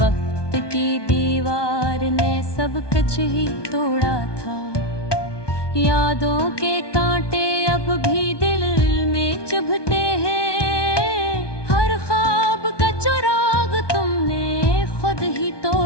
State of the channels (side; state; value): right; late; 1.2 ms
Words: की दीवार ने सब कुछ ही तोड़ा था। यादों के कांटे अब भी दिल में चुभते हैं। हर ख्वाब का चिराग तुमने खुद ही